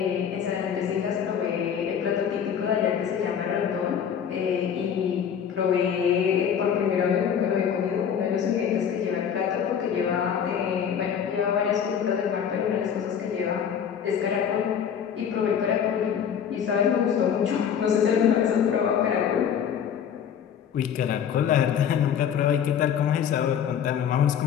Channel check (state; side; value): quieter; right; 8.2 dB